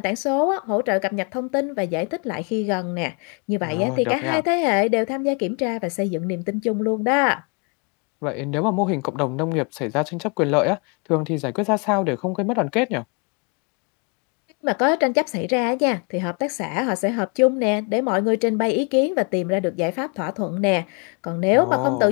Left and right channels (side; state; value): right; quieter; 34.6 dB